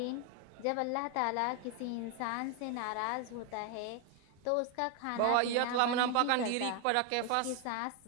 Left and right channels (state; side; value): different; both; correlation 0.01